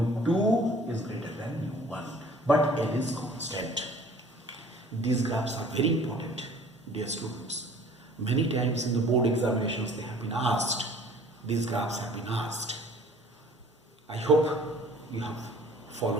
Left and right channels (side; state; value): both; normal; correlation 0.51